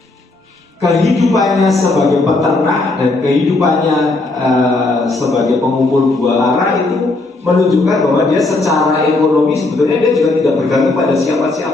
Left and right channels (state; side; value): quieter; right; 3.2 dB